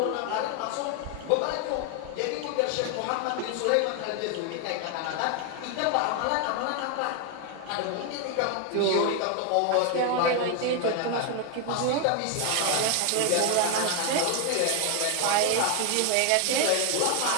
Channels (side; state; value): both; different; correlation 0.00